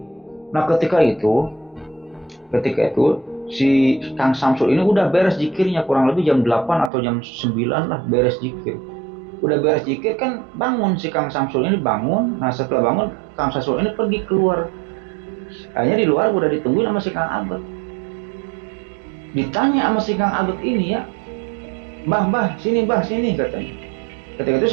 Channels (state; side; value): drops out; left; at 6.9 s